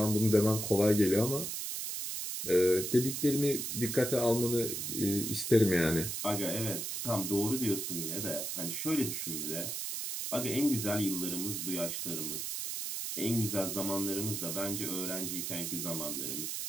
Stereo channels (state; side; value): noise; right; hiss, 3 dB below the sound